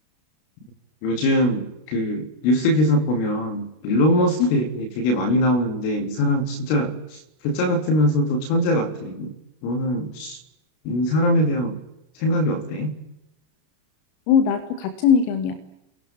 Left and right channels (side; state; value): right; late; 33 ms